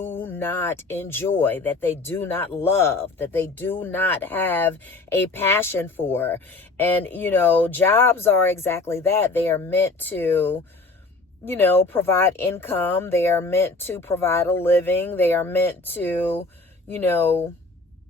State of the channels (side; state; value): right; quieter; 3.4 dB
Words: not enjoy, that they do not love, that they do not have a passion for. And, jobs are exactly that. They are meant to, provide income. They are meant to provide a living. They are meant to,